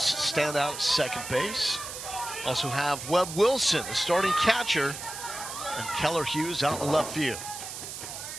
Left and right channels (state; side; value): noise; right; hiss, 9 dB below the sound